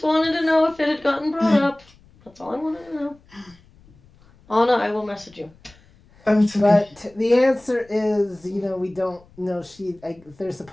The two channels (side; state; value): left; noise; rumble, 28 dB below the sound